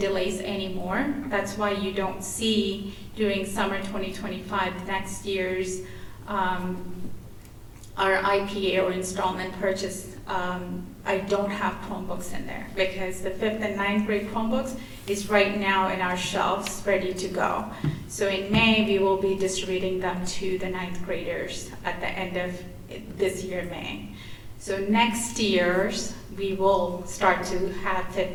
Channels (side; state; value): both; identical; correlation 1.00